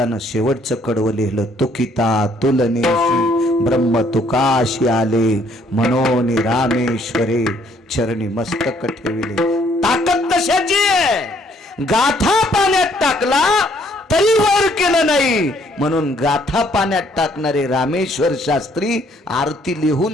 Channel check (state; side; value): normal; both; correlation 0.65